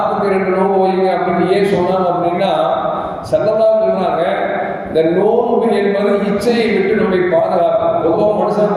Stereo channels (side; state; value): both; identical; correlation 1.00